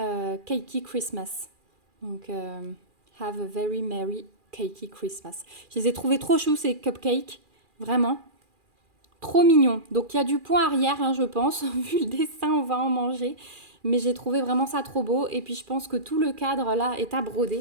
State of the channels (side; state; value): left; late; 2.4 ms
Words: Christmas. Donc... Have a very merry cakey Christmas. Je les ai trouvés trop choux ces cupcakes. Vraiment. Trop mignons. Donc il y a du point arrière, hein, je pense. Vu le dessin, on va en manger. Mais j'ai trouvé vraiment ça trop beau. Et puis je pense que tout le cadre là est à broder.